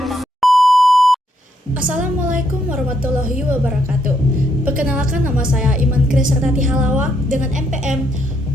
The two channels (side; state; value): both; normal; correlation 0.75